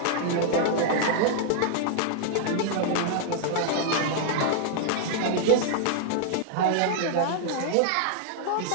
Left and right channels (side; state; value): both; different; correlation 0.00